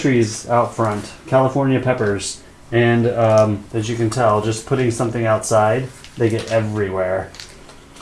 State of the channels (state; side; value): identical; both; correlation 1.00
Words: out front, California peppers, and as you can tell, just putting something outside, they get everywhere.